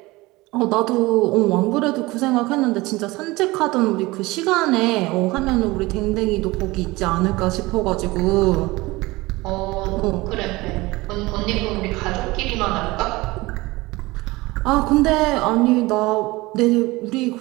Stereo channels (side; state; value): left; quieter; 21.2 dB